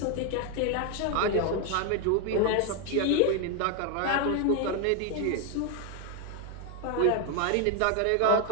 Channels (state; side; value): different; both; correlation 0.01